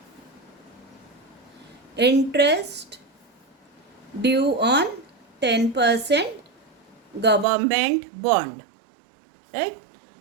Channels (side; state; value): left; drops out; at 7.5 s